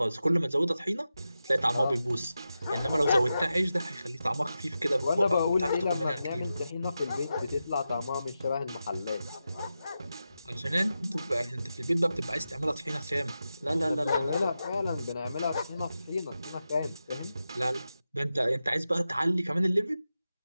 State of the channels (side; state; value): both; inverted; correlation -0.91